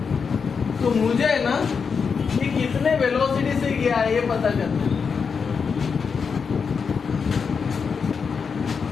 तो मुझे है ना ये कितने वेलोसिटी से गया है ये पता करना है।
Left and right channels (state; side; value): quieter; right; 5.8 dB